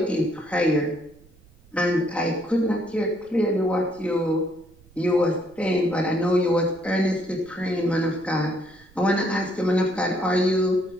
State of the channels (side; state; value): right; noise; rumble, 27 dB below the sound